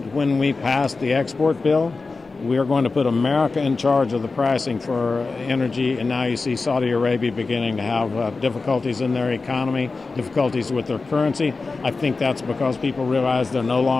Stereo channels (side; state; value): right; quieter; 4.0 dB